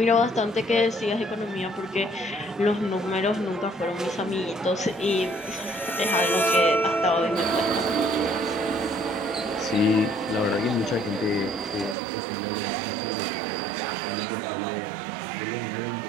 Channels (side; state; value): left; drops out; at 12.0 s